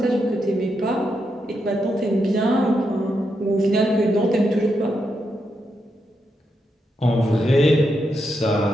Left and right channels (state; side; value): normal; both; correlation 0.83